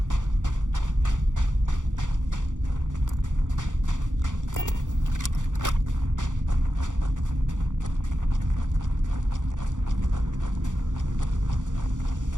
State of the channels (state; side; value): late; left; 0.87 ms